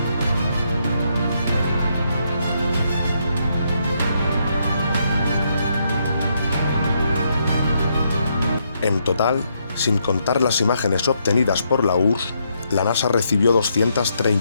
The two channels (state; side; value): inverted; both; correlation -0.76